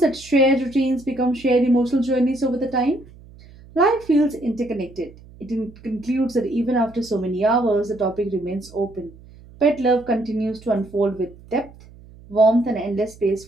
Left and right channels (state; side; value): noise; right; hum, 22 dB below the sound